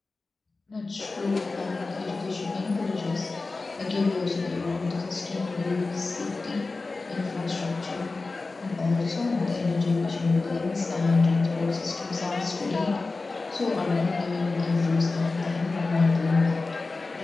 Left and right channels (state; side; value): quieter; right; 3.7 dB